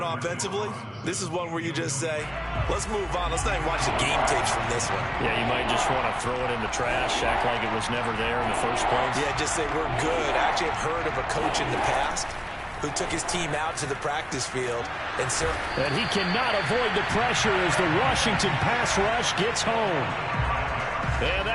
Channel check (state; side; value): identical; both; correlation 1.00